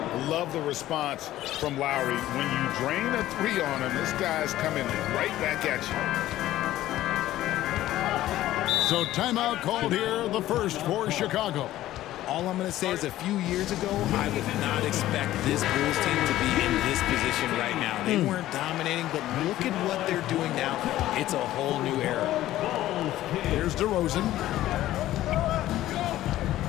Love the response from Lowry. When you drain a 3 on him, this guy's coming right back at you. So timeout called here, the first for Chicago. All I'm going to say is a few years ago, I would not expect this Bulls team to be in this position right now. They weren't dominating, but look at what they're doing now. It's a whole new era. Here's DeRozan.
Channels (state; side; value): quieter; right; 14.4 dB